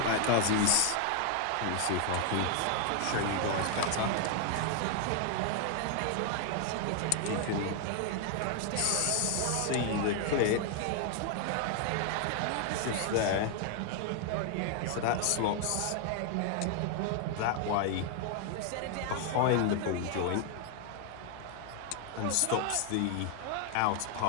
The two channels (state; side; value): different; both; correlation 0.00